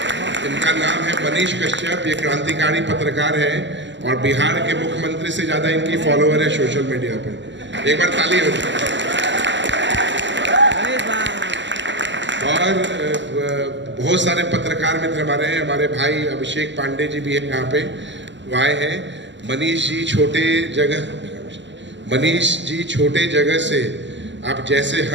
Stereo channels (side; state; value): left; late; 0.53 ms